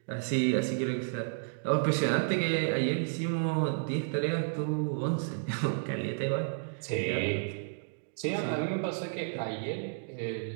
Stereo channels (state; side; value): silent; left; digital silence